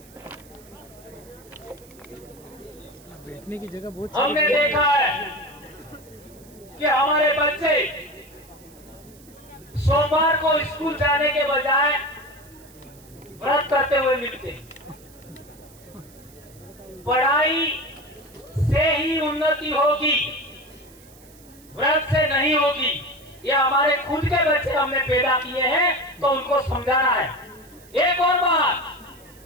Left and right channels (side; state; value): right; noise; hiss, 25 dB below the sound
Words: बैठने की जगह बहुत हमने देखा है कि हमारे बच्चे सोमवार को स्कूल जाने के बजाय व्रत करते हुए मिलते। पढ़ाई से ही उन्नति होगी, व्रत से नहीं होगी। ये हमारे खुद के बच्चे हमने पैदा किए हैं तो उनको समझाना है। एक और बात,